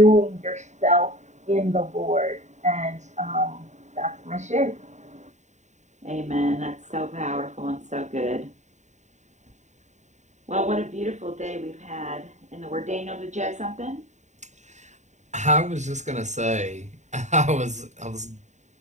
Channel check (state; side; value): late; left; 0.34 ms